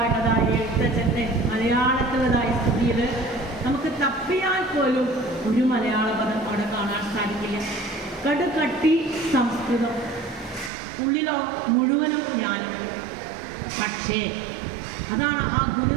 എഴുത്തച്ഛൻ്റെ മലയാളത്തിലതായ സ്തുതിയിൽ നമുക്ക് തപ്പിയാൽ പോലും ഒരു മലയാള പദം അവിടെ കാണാൻ സാധിക്കില്ല. കടുകട്ടി സംസ്കൃതം, ഉള്ളിലോ മുഴുവനും ജ്ഞാനം. പക്ഷേ അതാണ് ആ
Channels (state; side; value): drops out; left; at 10.7 s